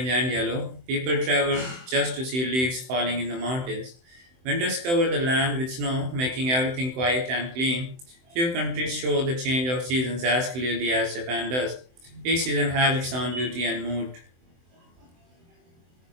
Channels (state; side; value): late; left; 23 ms